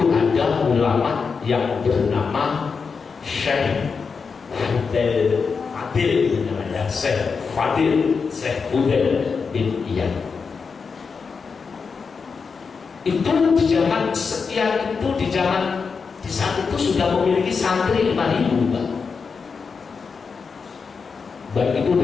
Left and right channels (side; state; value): right; quieter; 5.3 dB